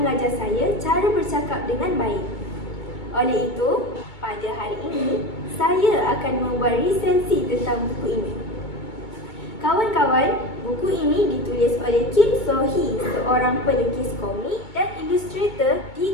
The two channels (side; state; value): right; late; 2.2 ms